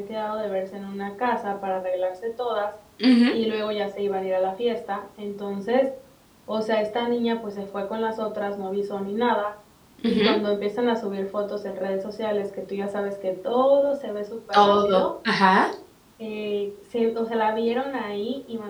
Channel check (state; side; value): identical; both; correlation 1.00